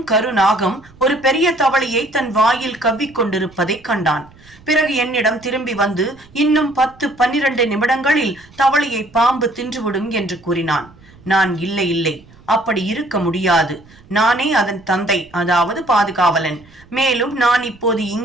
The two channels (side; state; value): right; noise; rumble, 26 dB below the sound